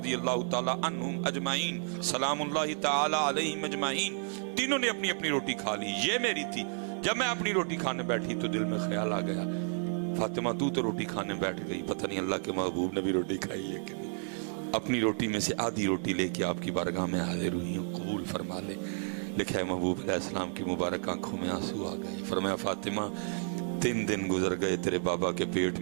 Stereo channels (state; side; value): silent; left; 57 dB below the other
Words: اللہ تعالی عنہم اجمعین سلام اللہ تعالی علیہم اجمعین. تینوں نے اپنی اپنی روٹی کھا لی، یہ میری تھی. جب میں اپنی روٹی کھانے بیٹھی تو دل میں خیال آ گیا فاطمہ تو روٹی کھانے بیٹھ گئی، پتہ نہیں اللہ کے محبوب نے بھی روٹی کھائی ہے کہ نہیں. اپنی روٹی میں سے آدھی روٹی لے کے آپ کی بارگاہ میں حاضر ہوئی ہوں، قبول فرما لے. لکھا ہے محبوب علیہ السلام کی مبارک آنکھوں میں آنسو آ گئے. فرمایا فاطمہ 3 دن گزر گئے تیرے بابا کے پیٹ